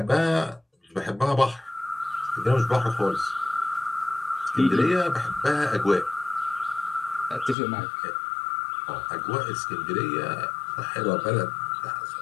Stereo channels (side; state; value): right; drops out; at 7.6 s